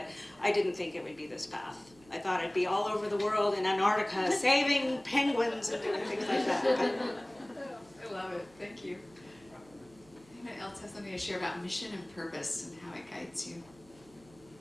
I didn't think it would be this path. I thought I'd be all over the world in Antarctica saving penguins and doing things like that. I love it. Thank you. Anyone else has something to share about mission and purpose and how it guides you?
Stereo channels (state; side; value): noise; right; hum, 26 dB below the sound